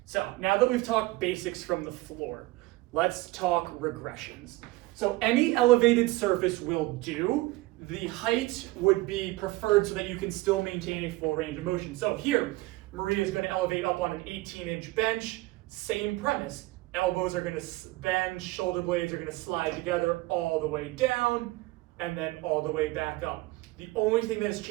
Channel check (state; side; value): quieter; left; 20.3 dB